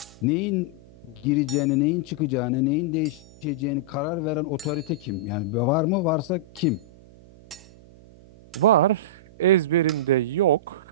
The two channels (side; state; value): right; noise; hum, 23 dB below the sound